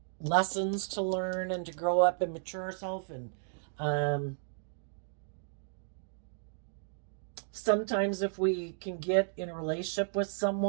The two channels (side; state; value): left; silent; digital silence